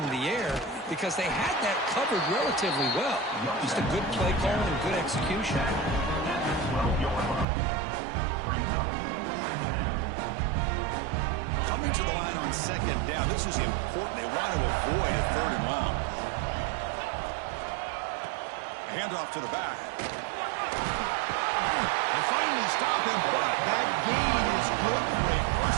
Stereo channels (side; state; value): left; drops out; at 7.5 s